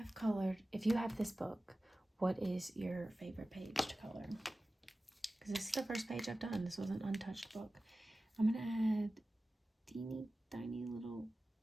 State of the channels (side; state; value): both; normal; correlation 0.96